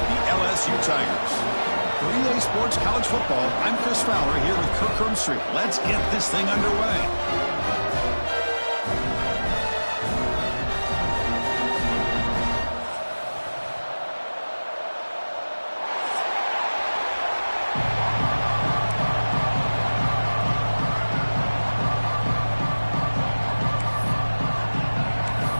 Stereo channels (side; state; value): both; inverted; correlation -1.00